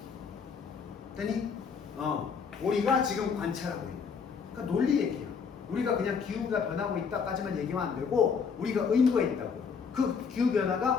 되니? 우리가 지금 관찰하고 있는. 그러니까 논리 얘기야. 우리가 그냥 기후가 변하고 있다까지만 얘기하면 안 되고 우리가 의무가 있다고. 그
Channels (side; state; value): right; quieter; 6.0 dB